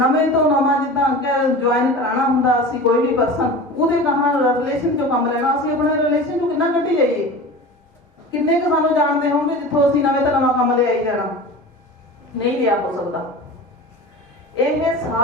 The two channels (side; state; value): both; normal; correlation 0.34